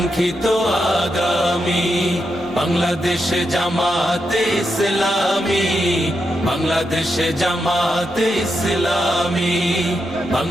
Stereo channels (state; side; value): normal; both; correlation 0.84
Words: আগামী। বাংলাদেশ জামাতে ইসলামী, বাংলাদেশ জামাতে ইসলামী,